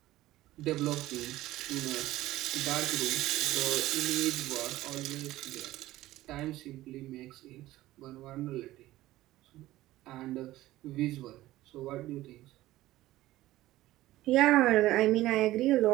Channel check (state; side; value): quieter; left; 16.2 dB